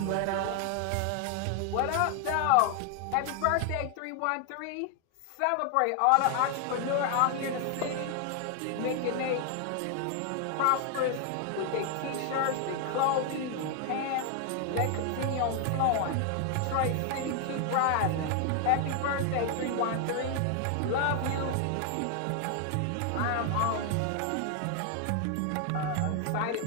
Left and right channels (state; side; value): different; both; correlation 0.00